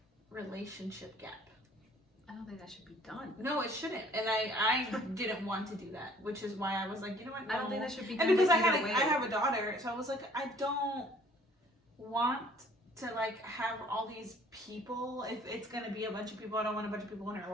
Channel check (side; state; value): both; normal; correlation 0.56